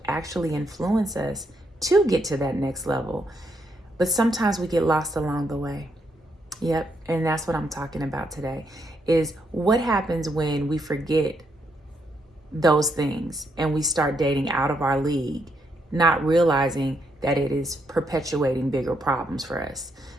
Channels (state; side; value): normal; both; correlation 0.77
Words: actually influence us to get to that next level. But sometimes we get lost along the way. Yep, and that's what I'm talking about today, is what happens when we forget those things and we start dating out of our league, not realizing that it is perpetuating bigger problems for us.